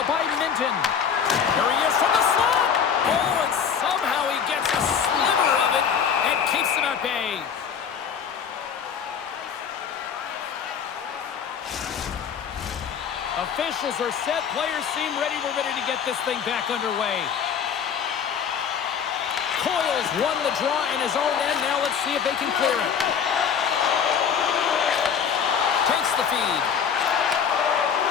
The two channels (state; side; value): quieter; right; 7.4 dB